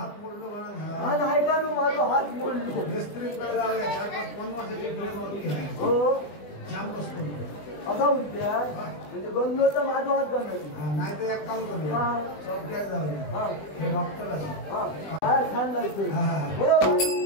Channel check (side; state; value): right; late; 20 ms